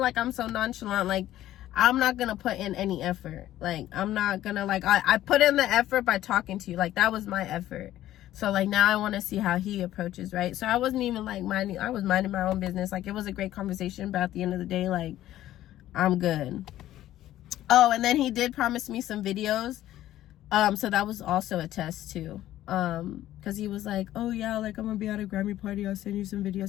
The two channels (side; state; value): right; quieter; 13.6 dB